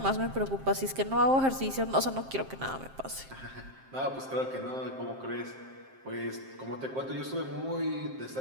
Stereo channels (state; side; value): late; left; 7.6 ms